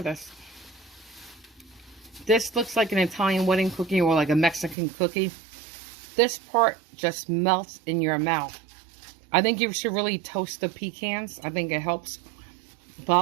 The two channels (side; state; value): left; drops out; at 4.8 s